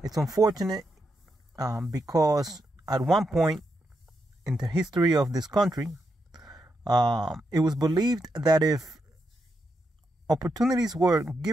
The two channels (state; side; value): normal; both; correlation 0.83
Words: It's unfortunate because at one point in the history of this country, it was believed that if opportunities were